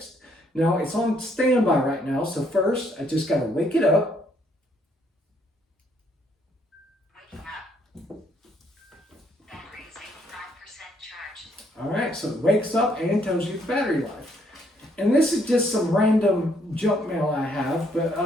Now, it's on standby right now, so first I just got to wake it up. Waking up. Battery is 85% charged. All right, so it wakes up and tells you battery life. And this is just some random junk mail I have,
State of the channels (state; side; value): normal; both; correlation 0.69